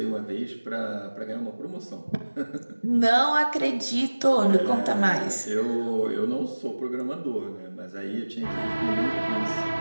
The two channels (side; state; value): both; inverted; correlation -1.00